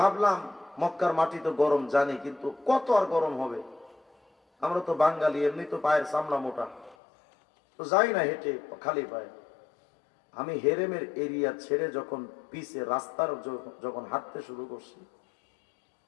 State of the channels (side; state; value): right; drops out; at 7.0 s